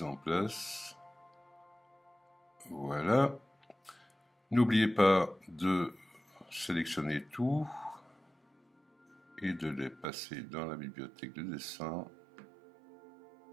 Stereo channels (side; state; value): left; drops out; at 10.1 s